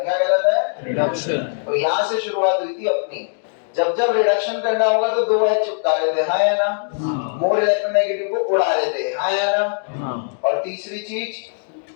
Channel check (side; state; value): right; silent; digital silence